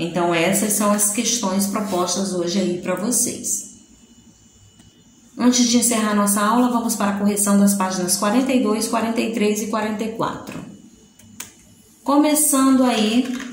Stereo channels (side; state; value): both; identical; correlation 1.00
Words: essas são as questões propostas hoje aí para vocês. Antes de encerrar nossa aula, vamos para a correção das páginas 42, 43 e 44. Começando aí